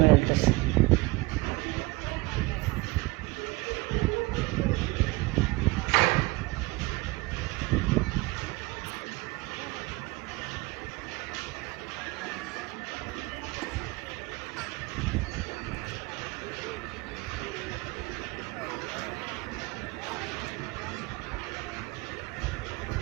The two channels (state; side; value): quieter; left; 23.3 dB